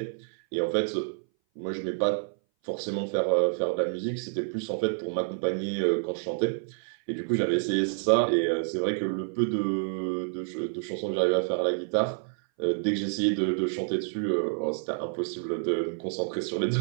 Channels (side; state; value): left; silent; 58 dB below the other